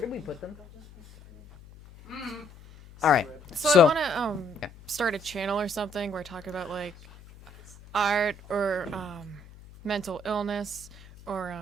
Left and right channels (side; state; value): left; noise; hum, 21 dB below the sound